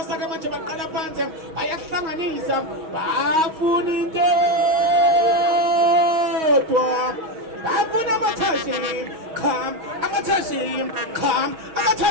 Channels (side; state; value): left; late; 6.3 ms